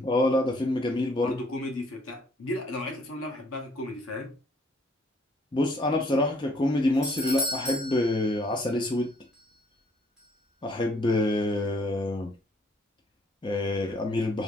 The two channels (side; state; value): both; normal; correlation 0.64